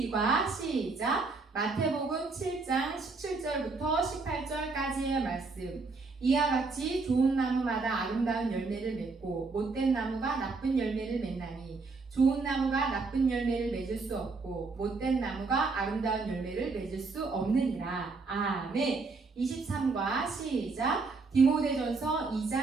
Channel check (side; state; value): left; quieter; 4.0 dB